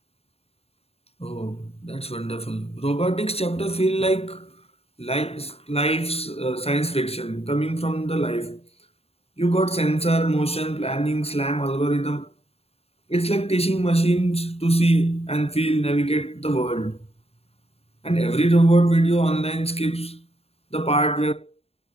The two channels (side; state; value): right; late; 0.29 ms